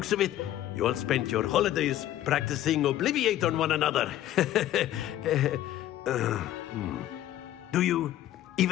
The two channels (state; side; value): quieter; right; 13.1 dB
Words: of it, you all spent your holidays practicing Obliviate on one another. Do you